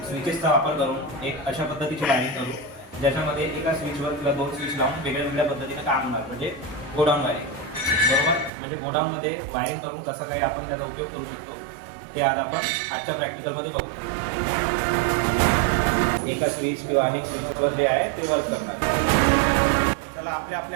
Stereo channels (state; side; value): drops out; left; at 8.5 s